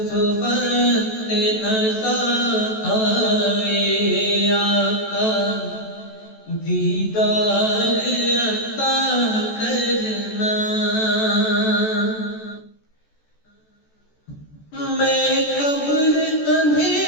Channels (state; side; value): late; right; 14 ms